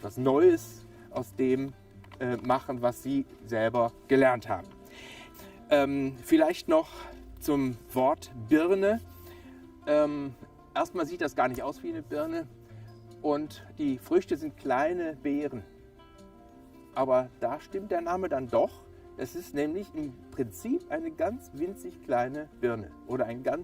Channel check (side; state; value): both; identical; correlation 1.00